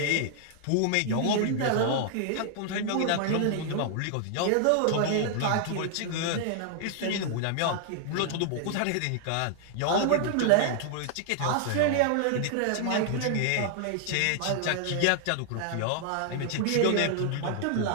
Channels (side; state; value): both; different; correlation 0.00